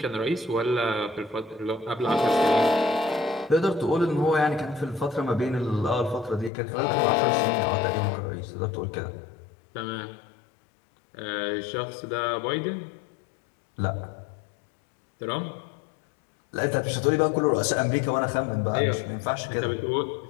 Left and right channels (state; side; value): drops out; right; at 6.5 s